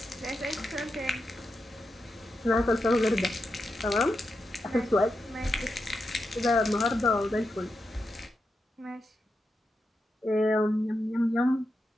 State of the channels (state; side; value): normal; both; correlation 0.87